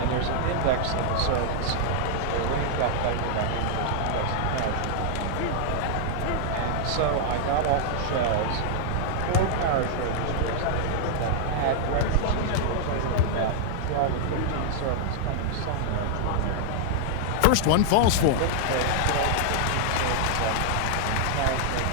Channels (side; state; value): both; different; correlation -0.01